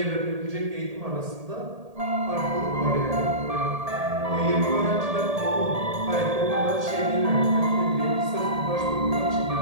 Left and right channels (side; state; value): left; late; 1.8 ms